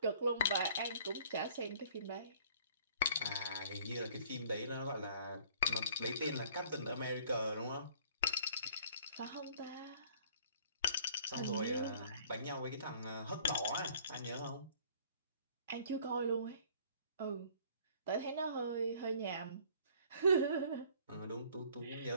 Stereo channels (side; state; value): both; inverted; correlation -0.55